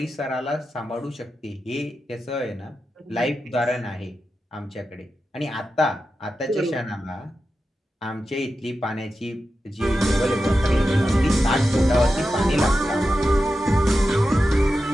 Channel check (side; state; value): both; normal; correlation 0.91